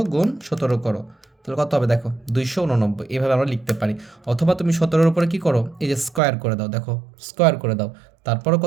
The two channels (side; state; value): left; drops out; at 6.2 s